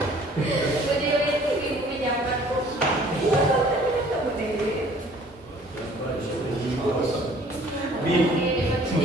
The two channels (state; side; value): normal; both; correlation 0.54